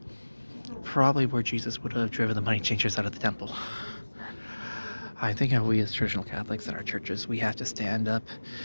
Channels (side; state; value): both; inverted; correlation -1.00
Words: probably where Jesus would have driven the money changers out of the temple. I think we as traditional Catholics in our churches, we have to stand up,